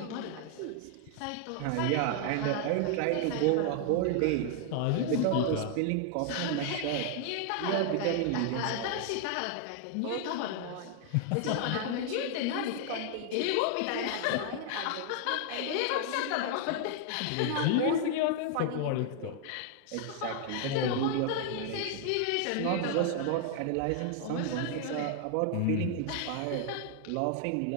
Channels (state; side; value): different; both; correlation 0.00